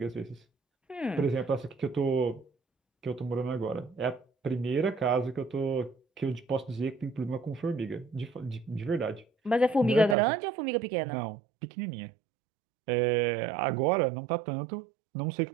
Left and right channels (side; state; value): left; drops out; at 10.2 s